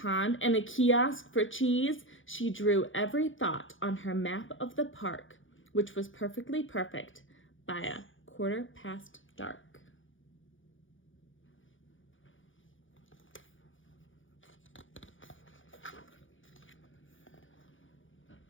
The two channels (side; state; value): right; late; 0.57 ms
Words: and a kiosk for cheese. She drew every thought on her map of the park, which was perfectly perfect by dark.